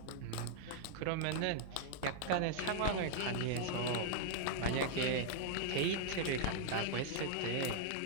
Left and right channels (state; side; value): different; both; correlation -0.01